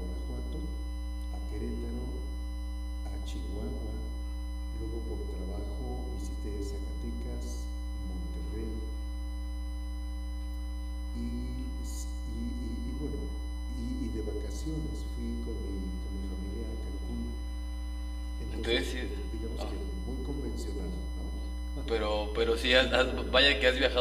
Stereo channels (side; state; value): both; identical; correlation 1.00